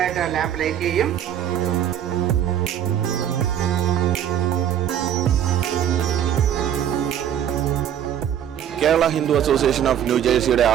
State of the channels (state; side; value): quieter; left; 10.0 dB